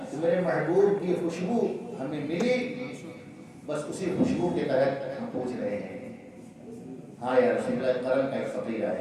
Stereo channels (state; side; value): identical; both; correlation 1.00